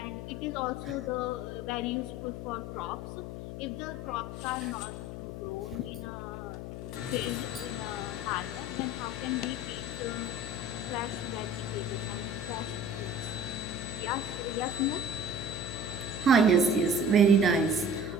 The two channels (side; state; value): left; noise; hum, 7 dB below the sound